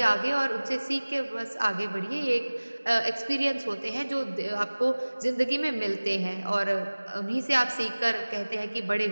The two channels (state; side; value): inverted; both; correlation -1.00